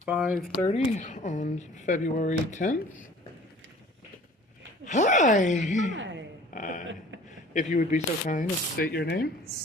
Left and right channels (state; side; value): normal; both; correlation 0.49